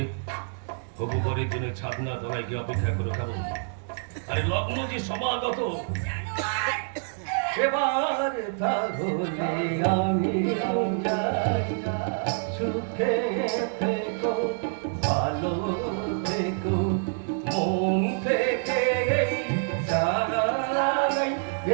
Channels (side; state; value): left; silent; digital silence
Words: হবু পরের জন্য ছাদনা তলায় গিয়ে অপেক্ষা করে থাকো। আরে লগ্ন যে সমাগত, সেবার তাহলে আমি যাই, সুখে থেকো, ভালো থেকো, মন থেকে চাই,